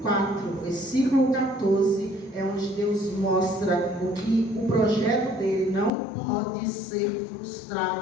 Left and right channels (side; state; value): right; drops out; at 5.9 s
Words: 4, versículo 14, é onde Deus mostra o projeto dele não pode ser